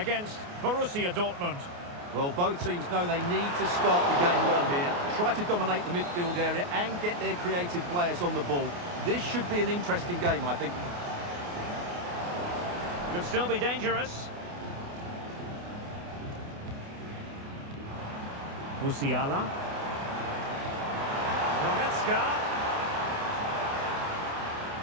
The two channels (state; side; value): late; left; 28 ms